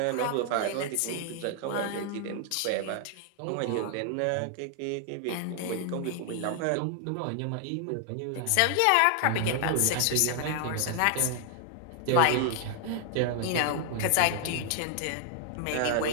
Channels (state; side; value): different; both; correlation 0.00